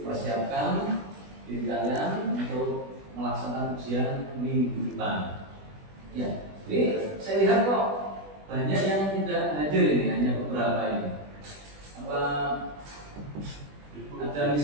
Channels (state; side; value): late; left; 20 ms